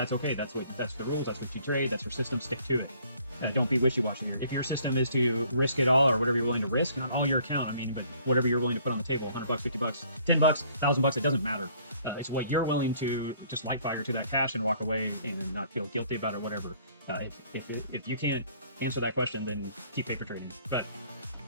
okay. That's the rules. That's what you trade. That's your system. Stick to it. Don't be wishy-washy here. If your system is to risk it all, or whatever you're willing to risk, not all your account, I mean, but whatever you're willing to put on the table, $100, $50, $10, $1,000, it doesn't matter. It's what you're willing to just light fire to that cash and walk away and not feel guilty about it or whatever. If you can't answer that question, then keep paper trading. But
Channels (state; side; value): inverted; both; correlation -0.59